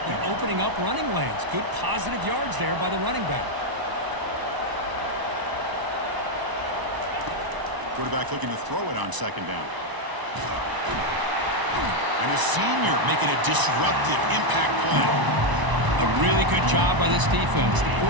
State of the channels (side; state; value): left; late; 1.0 ms